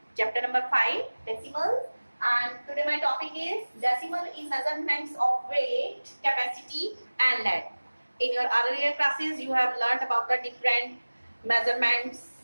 Chapter number 5 decimals, and today my topic is decimal in measurements of weight, capacity and length. In your earlier classes you have learnt about the different measurements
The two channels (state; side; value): inverted; both; correlation -1.00